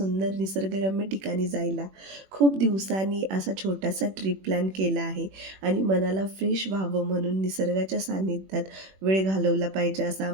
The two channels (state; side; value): late; left; 21 ms